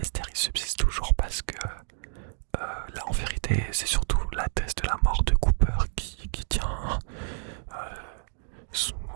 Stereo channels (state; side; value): silent; left; digital silence